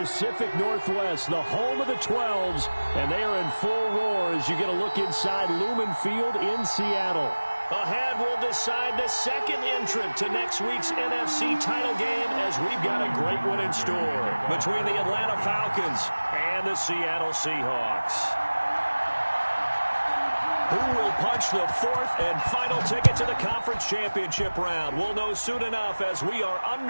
Northwest, the home of the 12s, and they are in full roar as you get a look inside Lumen Field in Seattle. Ahead, we'll decide the second entrant to next week's NFC title game as we've got a great one in store between the Atlanta Falcons and the Seattle Seahawks. Who will punch the fourth and final ticket to the conference championship round? We'll know soon enough as we are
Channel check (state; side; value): inverted; both; correlation -1.00